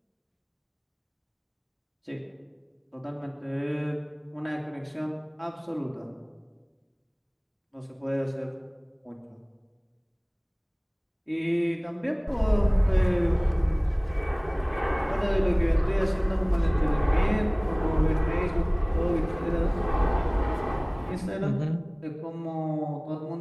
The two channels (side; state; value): both; identical; correlation 1.00